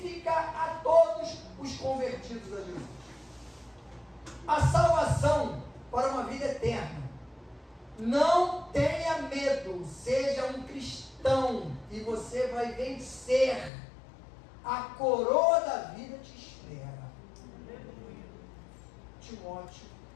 a todos os convertidos a Jesus. A salvação para uma vida eterna. Não tenha medo, seja um cristão e você vai vencer. A coroa da vida te espera. Timóteo,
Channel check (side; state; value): right; drops out; at 13.7 s